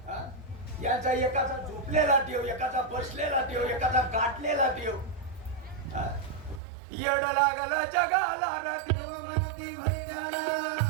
यांचा एकाचा झोपलेला देव, एकाचा बसलेला देव, एकाचा गाठलेला देव. येड लागला जगाला देव म्हणती भैयाला.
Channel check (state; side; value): drops out; left; at 6.6 s